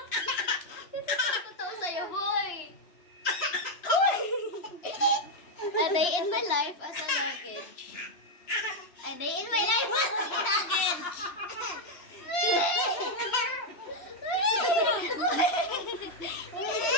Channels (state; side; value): late; right; 3.0 ms